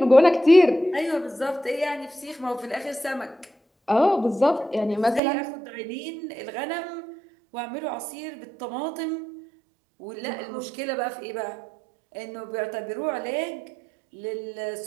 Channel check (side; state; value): left; drops out; at 5.2 s